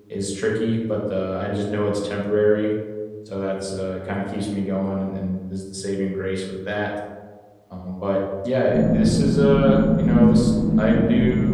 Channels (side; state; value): both; identical; correlation 1.00